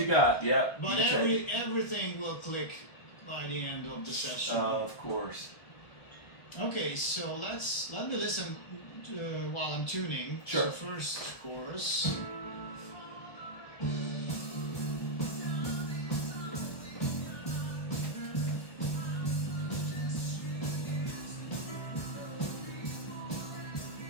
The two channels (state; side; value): late; right; 1.2 ms